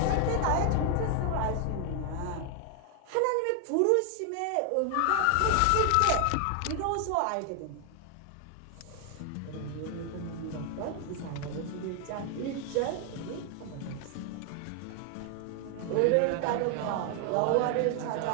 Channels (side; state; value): both; different; correlation 0.00